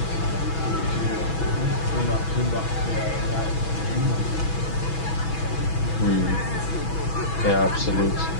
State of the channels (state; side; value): late; right; 6.1 ms